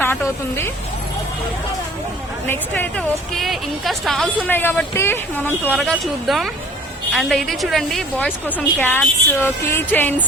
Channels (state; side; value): normal; both; correlation 0.49